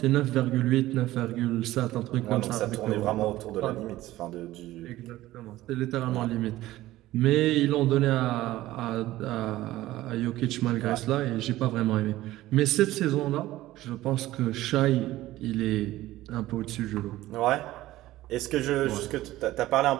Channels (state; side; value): quieter; left; 16.1 dB